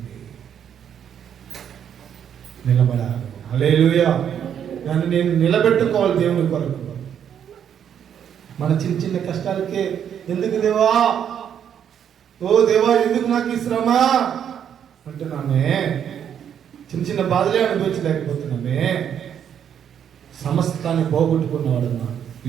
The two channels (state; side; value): quieter; left; 8.8 dB